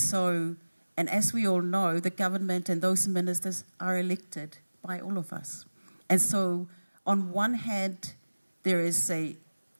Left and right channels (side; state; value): both; inverted; correlation -1.00